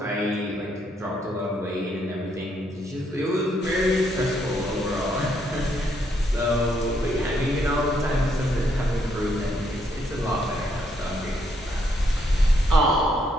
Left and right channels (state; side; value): normal; both; correlation 0.74